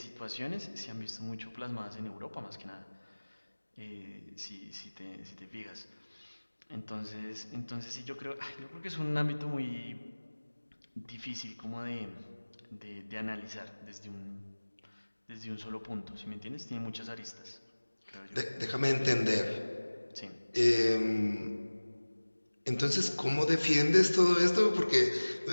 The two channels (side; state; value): both; inverted; correlation -1.00